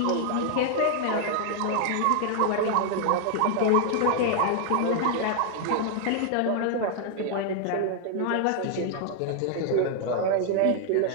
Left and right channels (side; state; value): both; different; correlation 0.00